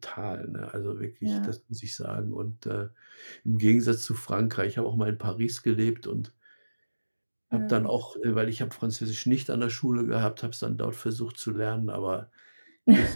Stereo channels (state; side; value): inverted; both; correlation -1.00